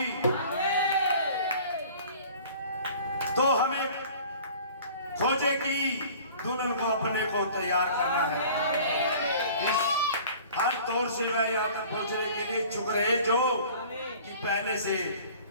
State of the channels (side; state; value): both; inverted; correlation -0.46